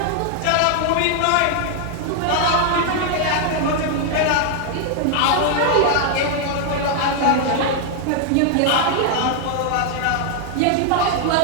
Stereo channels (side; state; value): both; different; correlation 0.00